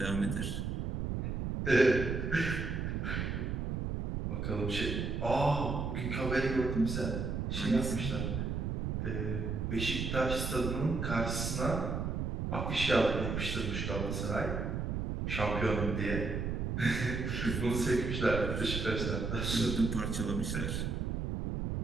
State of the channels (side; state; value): right; noise; rumble, 2 dB below the sound